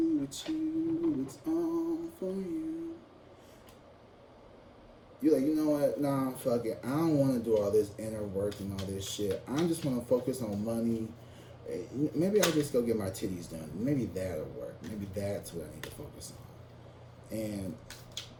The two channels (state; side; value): identical; both; correlation 1.00